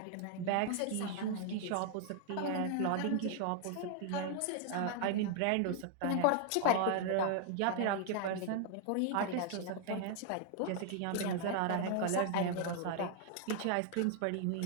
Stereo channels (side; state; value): both; different; correlation 0.00